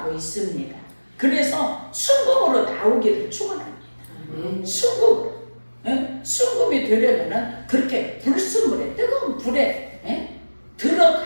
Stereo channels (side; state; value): both; inverted; correlation -1.00